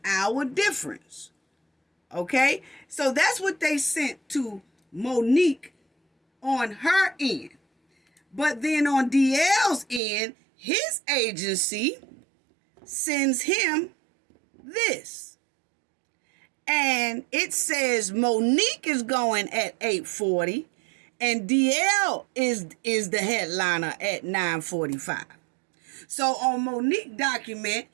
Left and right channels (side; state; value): left; drops out; at 10.0 s